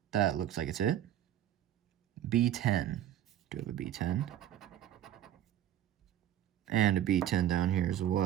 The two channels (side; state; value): left; quieter; 11.4 dB